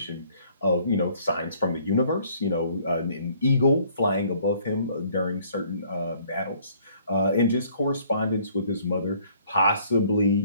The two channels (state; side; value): inverted; both; correlation -0.60